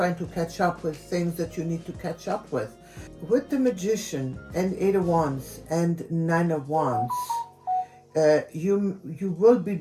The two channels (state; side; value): identical; both; correlation 1.00